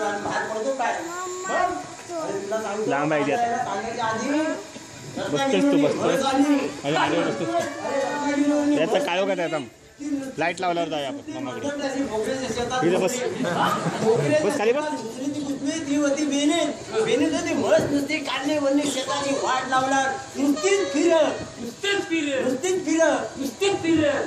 बाहेर पडतो काय लांब आहे सांगायच्या आधी बसतोस तू बसतोस त्याचा काय का त्याचा लाईट लावल्यावर जाऊया आपण मामाकडे तिथे बस बस खाली बस ती होती बेने होती मस्त नुसती काढली वरली शेताची वाट लावणार नुसतीच फिर अरे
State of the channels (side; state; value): both; identical; correlation 1.00